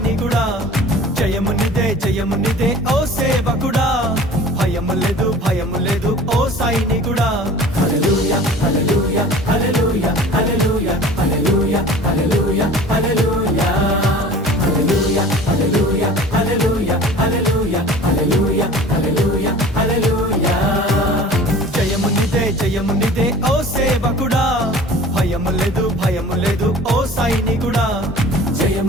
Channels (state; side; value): normal; both; correlation 0.43